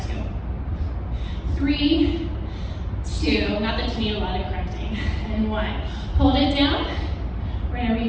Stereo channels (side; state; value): both; identical; correlation 1.00